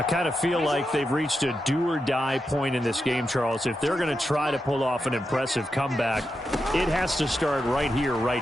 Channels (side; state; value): both; normal; correlation 0.87